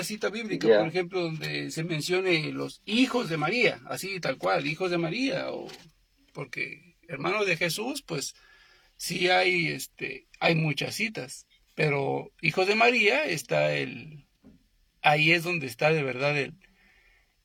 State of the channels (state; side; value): identical; both; correlation 1.00